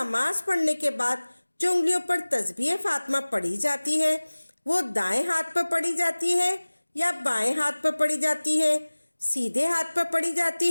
پڑھنے کے بعد جو انگلیوں پر تسبیح فاطمہ پڑھی جاتی ہے وہ دائیں ہاتھ پر پڑھی جاتی ہے یا بائیں ہاتھ پر پڑھی جاتی ہے، سیدھے ہاتھ پر پڑھی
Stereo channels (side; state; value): both; inverted; correlation -1.00